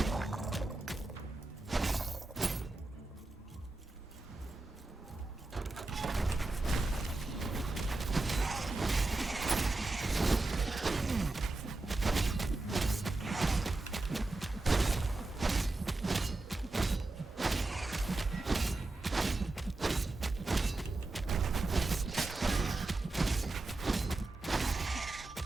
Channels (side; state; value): left; quieter; 3.1 dB